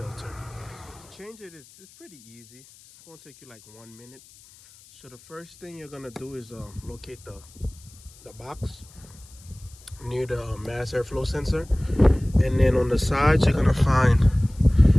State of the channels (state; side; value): noise; left; hiss, 24 dB below the sound